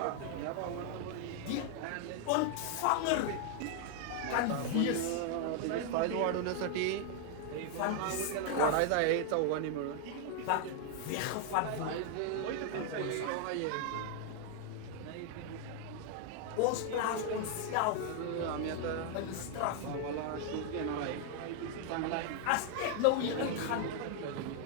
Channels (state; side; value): different; both; correlation 0.00